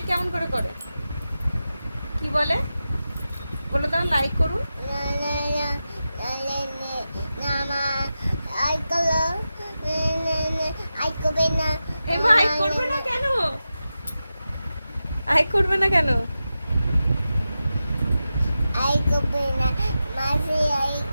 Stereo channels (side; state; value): both; inverted; correlation -0.92